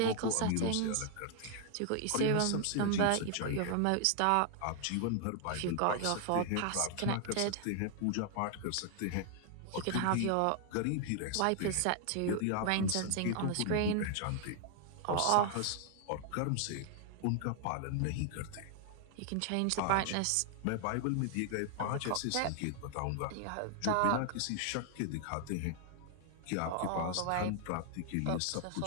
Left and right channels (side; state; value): both; different; correlation 0.00